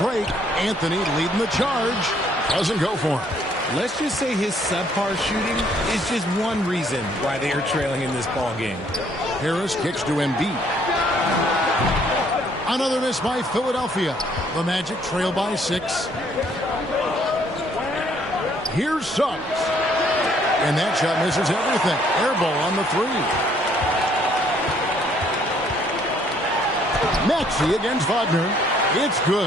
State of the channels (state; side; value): normal; both; correlation 0.64